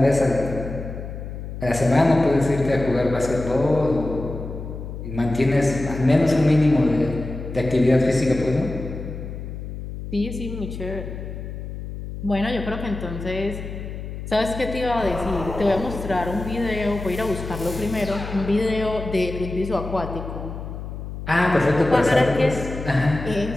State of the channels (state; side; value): noise; left; hum, 9 dB below the sound